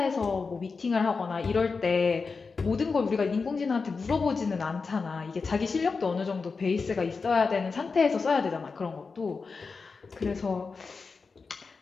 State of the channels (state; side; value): quieter; right; 4.6 dB